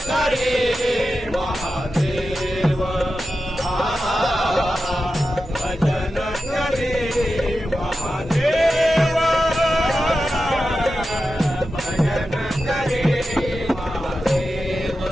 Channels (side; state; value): both; normal; correlation 0.91